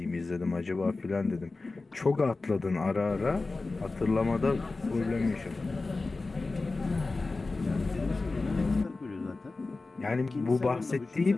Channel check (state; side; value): quieter; right; 3.5 dB